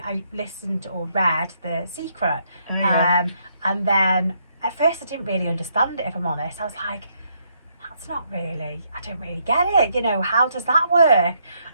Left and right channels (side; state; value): both; inverted; correlation -0.74